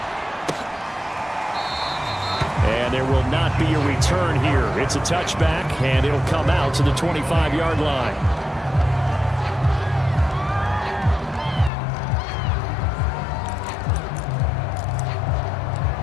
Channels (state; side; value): drops out; right; at 11.7 s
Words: And there will not be a return here. It's a touchback, and it'll come out to the 25-yard line.